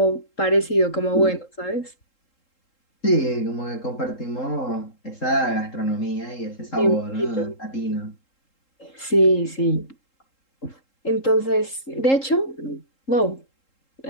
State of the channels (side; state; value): right; late; 3.7 ms